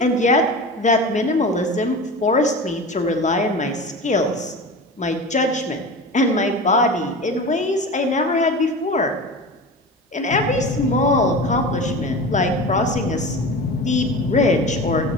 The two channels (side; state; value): both; normal; correlation 0.31